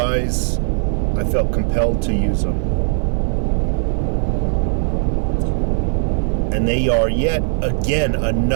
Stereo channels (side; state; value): left; silent; 56 dB below the other